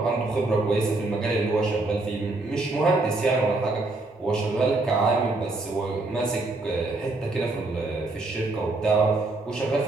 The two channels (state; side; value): quieter; left; 3.1 dB